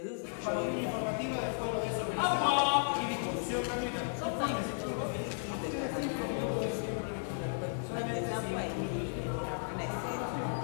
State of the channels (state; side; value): silent; right; 55 dB below the other